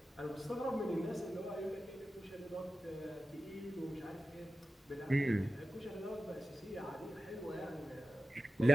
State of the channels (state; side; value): normal; both; correlation 0.93